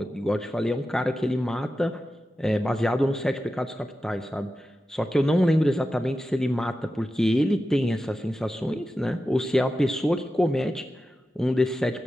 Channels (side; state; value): both; normal; correlation 0.92